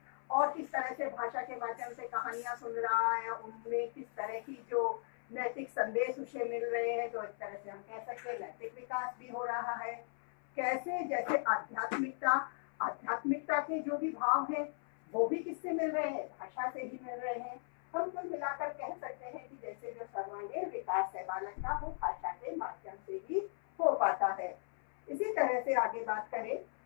और किस तरह से भाषा के माध्यम से कहानियां सुन रहा है, उनमें किस तरह की जो नैतिक संदेश उसे मिल रहे हैं, तो इस तरह से हम कह सकते हैं नैतिक विकास भी हो रहा है। कैसे, जैसे आध्यात्मिकता के जो भी भाव हैं वो भी किससे मिल रहे हैं, भाषा से ही मिल रहे हैं। हम कुल मिलाकर कह सकते हैं कि जैसे जो सर्वांगीण विकास है बालक का, वो भाषा के माध्यम से ही हो पाता है। इसी तरह से आगे बात करें,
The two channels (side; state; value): right; silent; 53 dB below the other